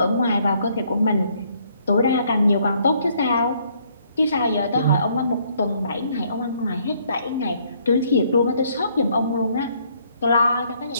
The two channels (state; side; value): inverted; both; correlation -0.67